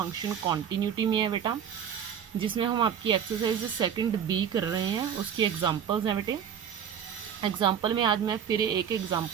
continuity में है बेटा, जिसमें हम आपकी एक्सरसाइज सेकंड बी कर रहे हैं, उसकी एग्जांपल्स हैं बेटे। एग्जांपल में आज मैं फिर एक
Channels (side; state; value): left; quieter; 8.5 dB